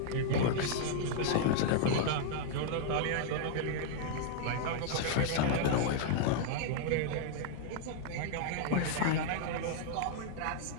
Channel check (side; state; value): both; different; correlation -0.01